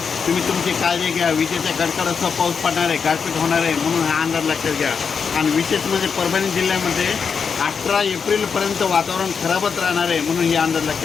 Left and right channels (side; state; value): right; quieter; 6.0 dB